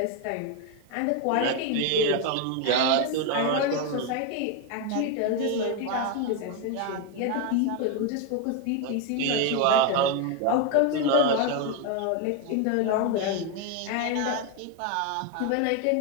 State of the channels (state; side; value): different; both; correlation 0.01